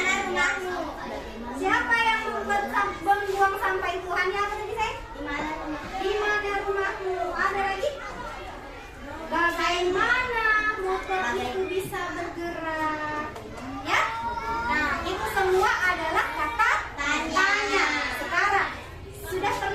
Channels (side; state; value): both; identical; correlation 1.00